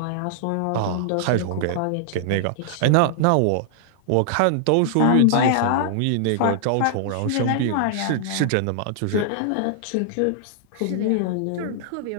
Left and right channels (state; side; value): different; both; correlation -0.01